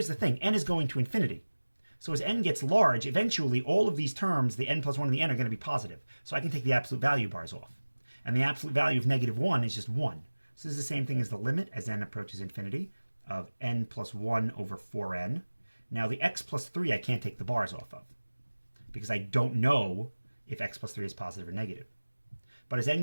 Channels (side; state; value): both; inverted; correlation -1.00